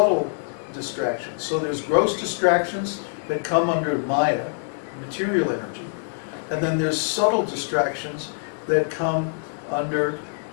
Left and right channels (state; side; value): silent; right; digital silence